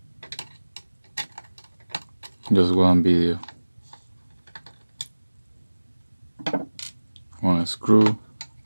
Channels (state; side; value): inverted; both; correlation -1.00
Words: Just one video. One screw.